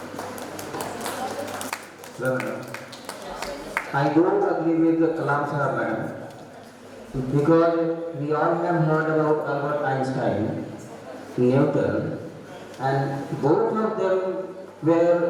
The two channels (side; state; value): both; identical; correlation 1.00